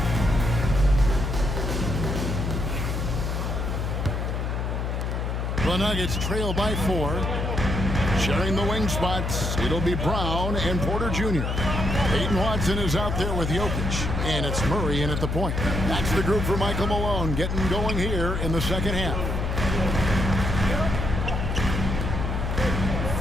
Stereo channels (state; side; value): noise; left; hum, 1 dB below the sound